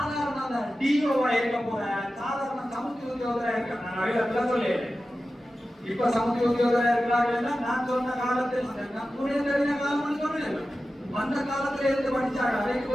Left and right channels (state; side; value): normal; both; correlation 0.94